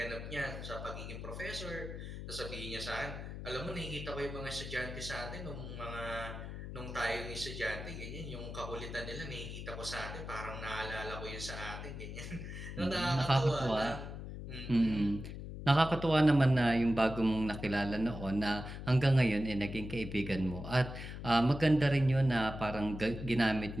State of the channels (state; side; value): noise; left; hum, 8 dB below the sound